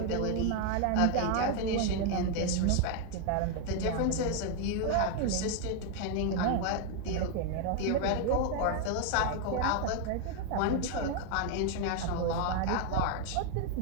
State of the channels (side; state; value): both; different; correlation 0.01